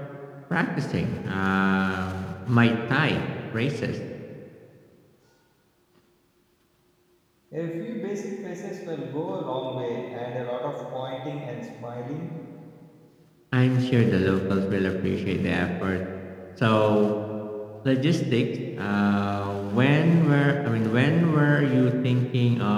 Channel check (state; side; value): identical; both; correlation 1.00